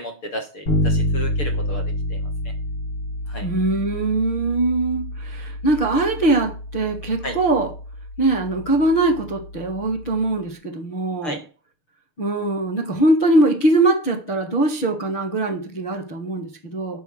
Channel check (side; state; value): right; late; 6.6 ms